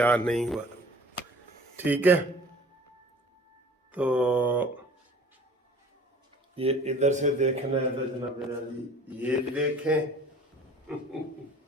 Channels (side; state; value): both; normal; correlation 0.47